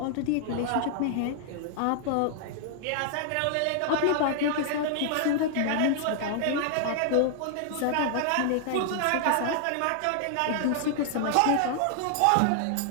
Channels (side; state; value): both; different; correlation -0.01